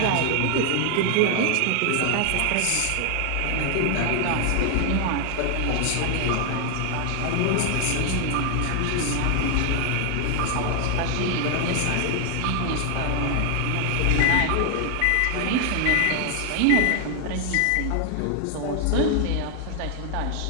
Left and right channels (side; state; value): both; different; correlation 0.00